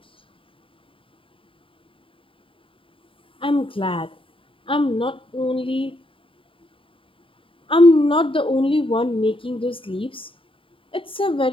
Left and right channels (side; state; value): right; late; 0.25 ms